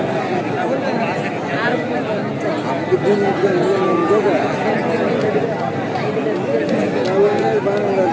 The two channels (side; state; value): both; identical; correlation 1.00